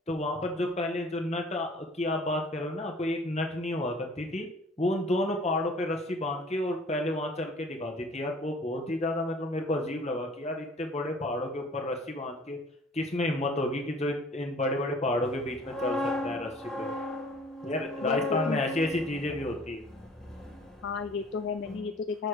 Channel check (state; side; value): normal; both; correlation 0.51